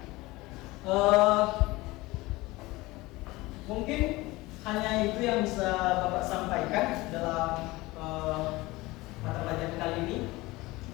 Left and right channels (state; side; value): quieter; right; 20.7 dB